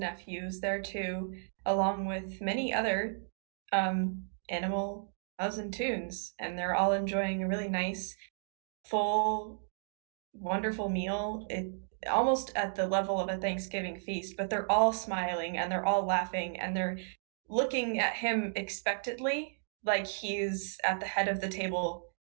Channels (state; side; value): silent; left; digital silence